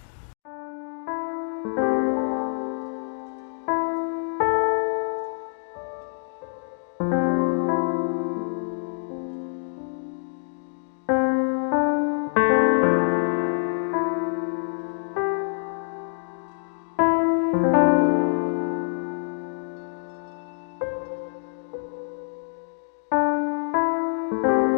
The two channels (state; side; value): silent; right; digital silence